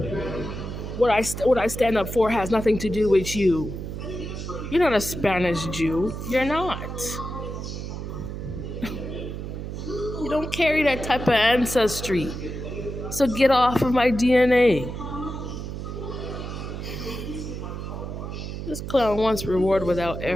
What I stand up for has nothing to do with you. You're not a Spanish Jew. You're not. You don't carry that type of ancestry. So get off of my DNA. This clown wants reward without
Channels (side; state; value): right; noise; hum, 7 dB below the sound